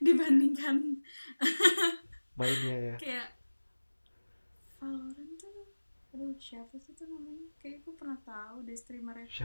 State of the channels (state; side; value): inverted; both; correlation -1.00